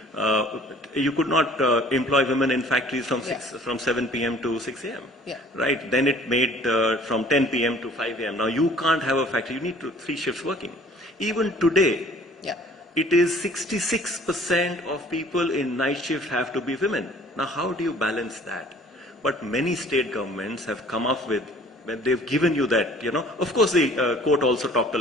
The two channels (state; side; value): normal; both; correlation 0.52